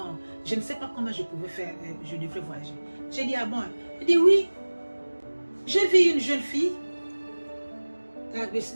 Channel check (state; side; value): inverted; both; correlation -1.00